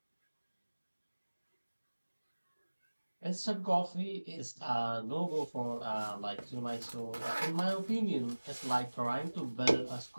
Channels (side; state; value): both; inverted; correlation -1.00